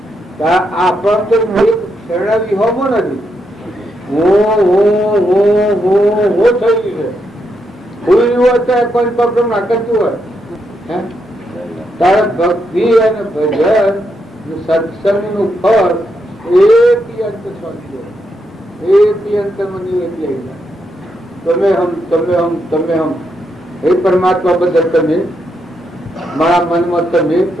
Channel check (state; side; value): normal; both; correlation 0.81